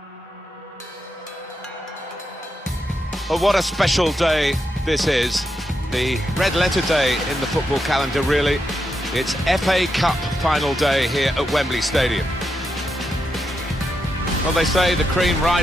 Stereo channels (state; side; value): normal; both; correlation 0.84